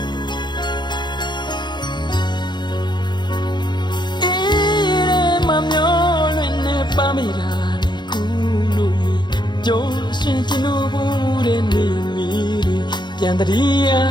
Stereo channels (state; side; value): late; right; 0.21 ms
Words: ပါမိတာလေကူလို့ကြိုးရှင်ချင်လို့ဘူးတဲ့နေမီပြန်တည်းရ